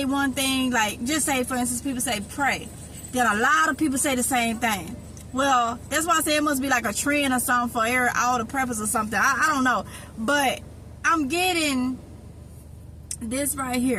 one thing, like just say for instance people say pray, then a lot of people say the same thing. Well, that's why I say it must be like a trend or something for all the preppers or something. I don't know, but I'm getting this right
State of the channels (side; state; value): both; identical; correlation 1.00